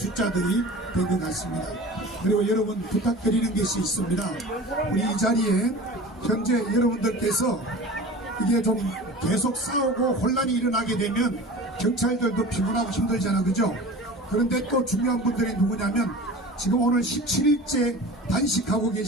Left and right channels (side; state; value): both; normal; correlation 0.37